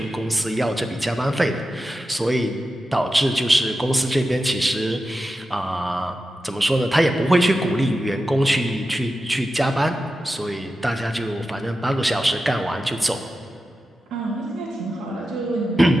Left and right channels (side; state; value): both; normal; correlation 0.91